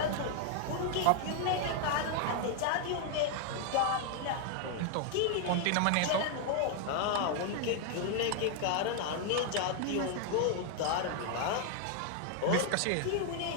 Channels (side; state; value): both; different; correlation 0.00